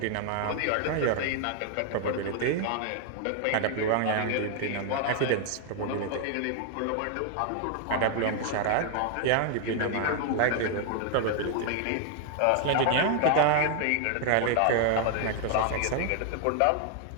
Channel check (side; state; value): both; different; correlation 0.00